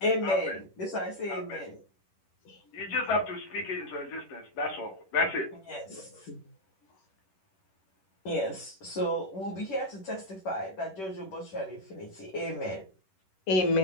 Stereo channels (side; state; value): right; late; 10 ms